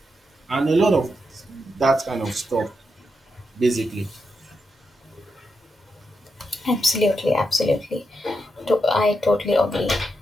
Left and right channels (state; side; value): normal; both; correlation 0.84